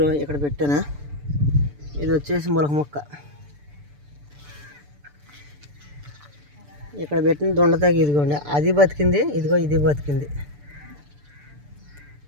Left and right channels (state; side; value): late; left; 6.9 ms